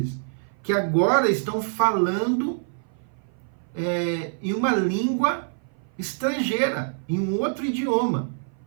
que agora estão falando em uma língua estrangeira, em um outro idioma.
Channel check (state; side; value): silent; left; 56 dB below the other